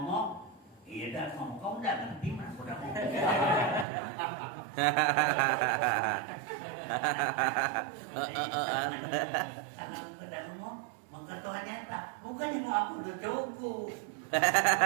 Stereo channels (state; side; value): drops out; left; at 3.9 s